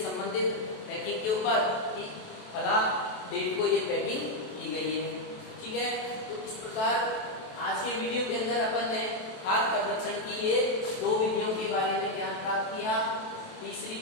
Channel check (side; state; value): right; late; 27 ms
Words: संबंधित पैकिंग के ऊपर कि फला डेट को ये पैकिंग की गई है, ठीक है। तो इस प्रकार आज के वीडियो के अंदर अपन ने खाद्य संरक्षण की ये दो विधियों के बारे में ज्ञान प्राप्त किया। तीसरी